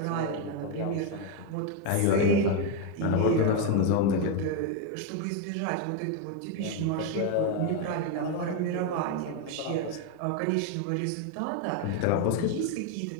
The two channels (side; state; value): both; different; correlation 0.02